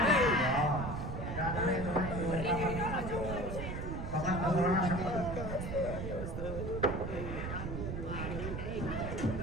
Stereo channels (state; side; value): noise; right; rumble, 5 dB below the sound